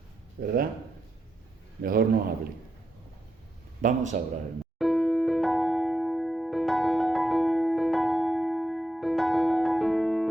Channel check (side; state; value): both; normal; correlation 0.84